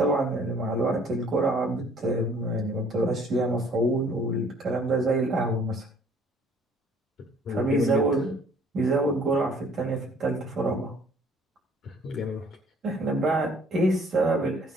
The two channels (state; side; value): normal; both; correlation 0.57